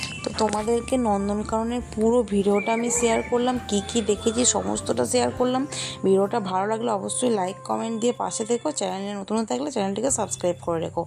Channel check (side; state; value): both; identical; correlation 1.00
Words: তো তোমাদেরকে নন্দনকাননের পুরো ভিডিওটা আমি শেয়ার করলাম, কি দেখেছি সমস্তটা শেয়ার করলাম। ভিডিওটা ভালো লাগলে অবশ্যই লাইক কমেন্ট দিয়ে পাশে থেকো। চ্যানেলে নতুন থাকলে চ্যানেলটিকে সাবস্ক্রাইব করে রেখো।